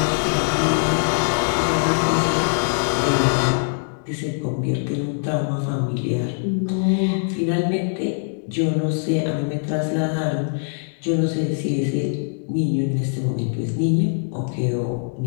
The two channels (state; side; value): silent; right; digital silence